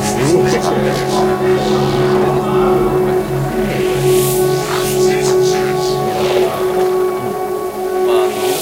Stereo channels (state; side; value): identical; both; correlation 1.00